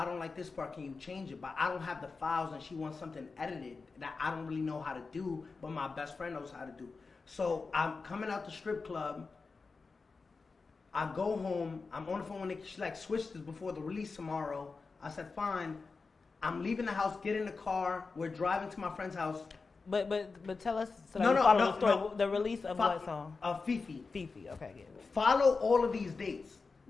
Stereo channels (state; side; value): quieter; right; 4.3 dB